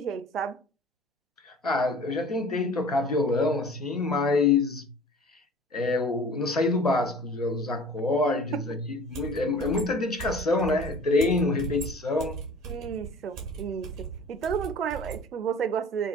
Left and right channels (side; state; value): both; normal; correlation 0.45